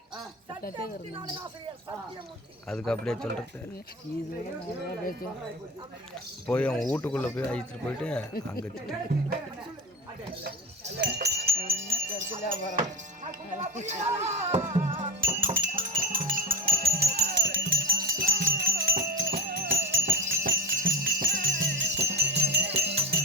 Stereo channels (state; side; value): normal; both; correlation 0.21